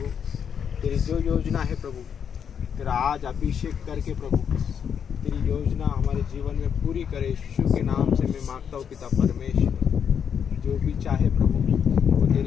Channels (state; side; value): quieter; right; 7.7 dB